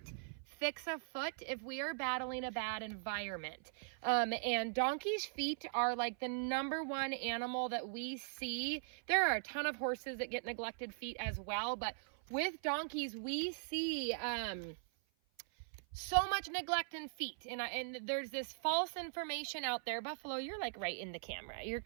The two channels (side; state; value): left; silent; 51 dB below the other